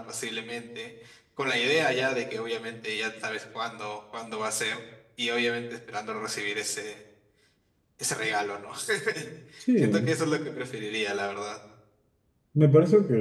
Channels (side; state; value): both; identical; correlation 1.00